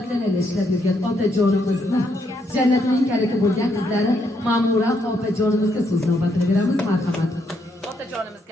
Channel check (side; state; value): both; normal; correlation 0.75